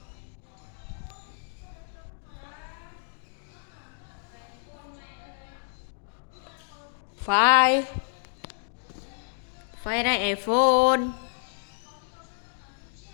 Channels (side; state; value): right; silent; digital silence